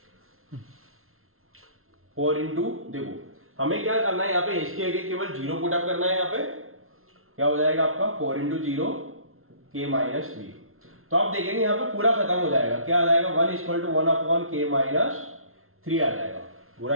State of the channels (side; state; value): left; late; 0.62 ms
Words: 4 इंटू, देखो हमें क्या करना है यहाँ पे एस के आगे केवल 0 पुटअप करना है। यहाँ पे क्या हो जाएगा आपका 4 इंटू 0 के माइनस 3। तो आप देखेंगे यहाँ पे पूरा खत्म हो जाएगा, क्या आ जाएगा 1 इक्वल टू 1 अपॉन के माइनस 3 आ जाएगा,